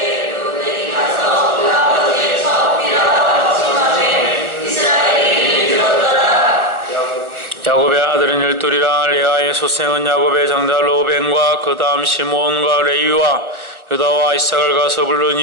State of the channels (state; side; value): late; left; 1.3 ms